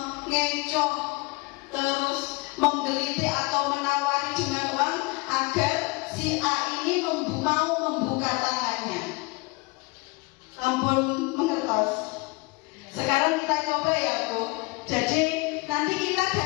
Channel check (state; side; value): quieter; right; 26.0 dB